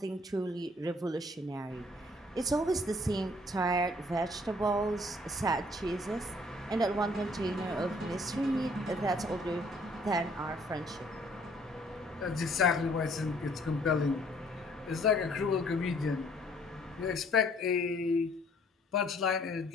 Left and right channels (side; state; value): both; normal; correlation 0.61